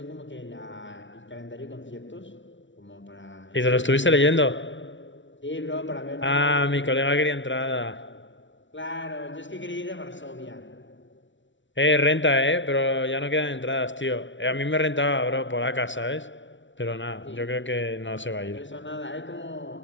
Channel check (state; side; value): late; right; 0.55 ms